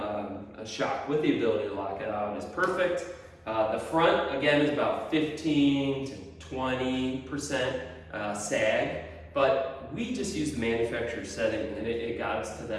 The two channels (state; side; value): identical; both; correlation 1.00